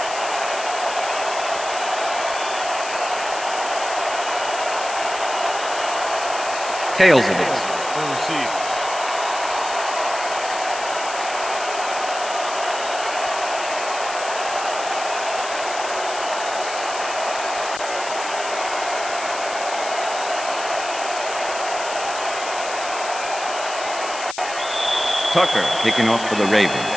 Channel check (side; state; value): left; noise; hiss, 9 dB below the sound